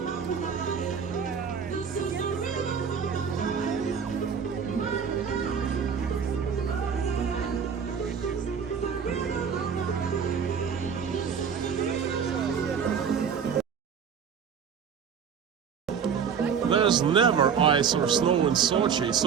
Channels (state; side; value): quieter; left; 6.9 dB